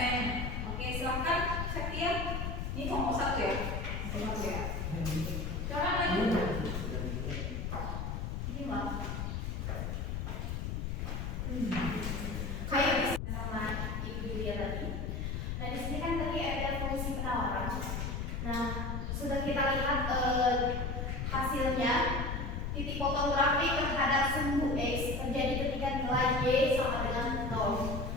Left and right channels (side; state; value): left; noise; rumble, 2 dB below the sound